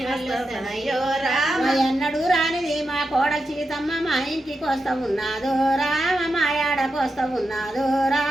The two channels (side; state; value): both; normal; correlation 0.88